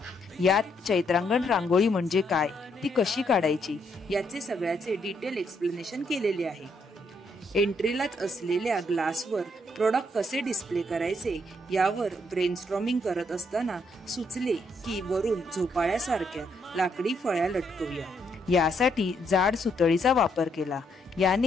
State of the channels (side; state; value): both; normal; correlation 0.74